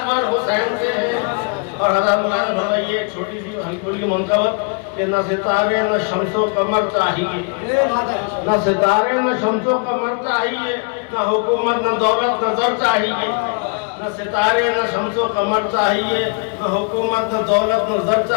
پر حسین سے ہیں۔ اور حضرت مولانا فرمائیے ایک چھوٹی سی ہلکی کی منتبت کہ نہ ستارے نہ شمس و قمر چاہیے، نہ ستارے نہ شمس و قمر چاہیے، نہ حکومت نہ دولت نہ زر چاہیے، نہ ستارے نہ شمس و قمر چاہیے، نہ حکومت نہ دولت نہ زر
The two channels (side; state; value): right; quieter; 37.9 dB